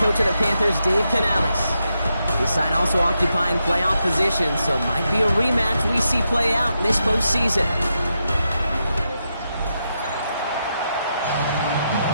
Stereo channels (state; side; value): inverted; both; correlation -0.84